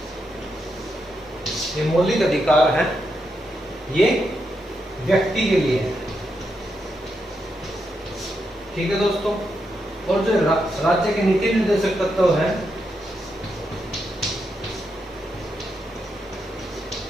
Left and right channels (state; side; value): normal; both; correlation 0.83